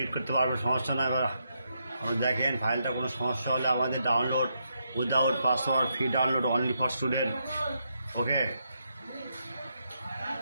করতে পারবেন, সমস্যা নয়। এবার দেখেন ফাইলটা কোনো সমস্যা হলে আমাদের download without password, free download, only for student. Okay,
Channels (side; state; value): both; inverted; correlation -0.80